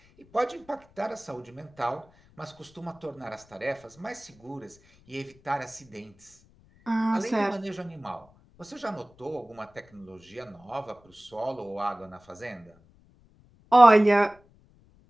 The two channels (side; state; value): left; noise; rumble, 29 dB below the sound